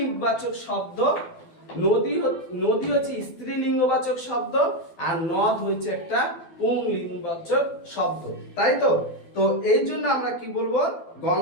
শব্দ, নদী হচ্ছে স্ত্রীলিঙ্গবাচক শব্দ, আর নদ হচ্ছে একটা পুংলিঙ্গবাচক শব্দ, তাই তো? তো এই জন্য আমরা কি বলবো?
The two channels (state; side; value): late; right; 12 ms